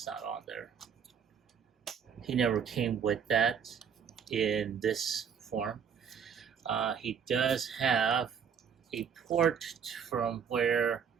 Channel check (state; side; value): quieter; left; 7.3 dB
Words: not on there. He never came with that in this form. He does have a port from where